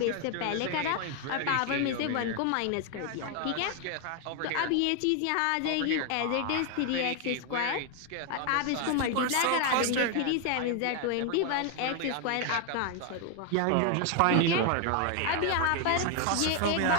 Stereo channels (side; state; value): both; different; correlation 0.01